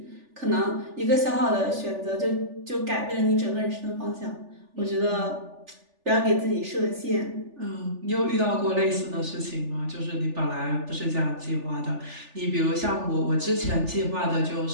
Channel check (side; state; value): left; late; 3.4 ms